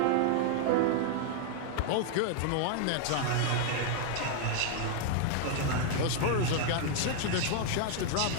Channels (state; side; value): different; both; correlation 0.00